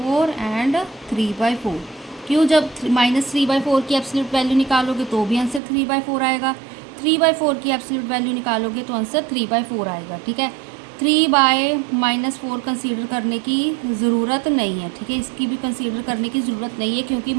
एंड 3/4। क्यों, जब -3/4 की एब्सोल्यूट वैल्यू निकालोगे तो भी आंसर 3/4 आएगा, 3/4 की एब्सोल्यूट वैल्यू निकालोगे तो आंसर 3/4 आएगा, ठीक है। 3/-4 कंसीडर करने की ज़रूरत नहीं है, ठीक है, इसकी भी कंसीडर करने की ज़रूरत नहीं है क्योंकि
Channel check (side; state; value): left; drops out; at 5.6 s